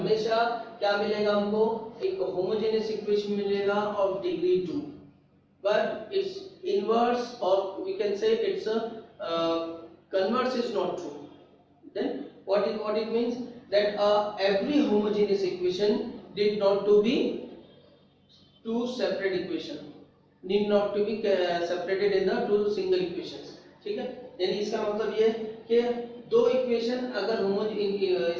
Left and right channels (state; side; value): identical; both; correlation 1.00